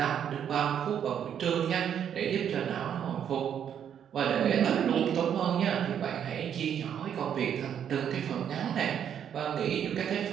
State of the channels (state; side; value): quieter; left; 8.9 dB